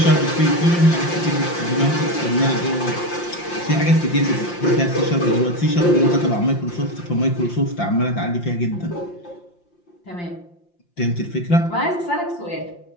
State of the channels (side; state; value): right; late; 5.7 ms